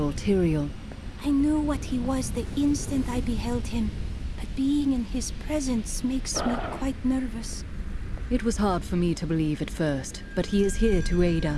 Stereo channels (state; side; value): identical; both; correlation 1.00